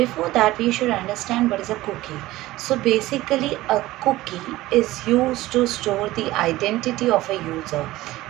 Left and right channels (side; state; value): left; quieter; 17.3 dB